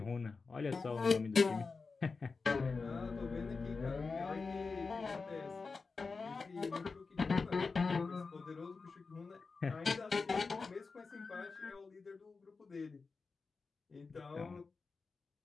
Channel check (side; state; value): right; quieter; 4.4 dB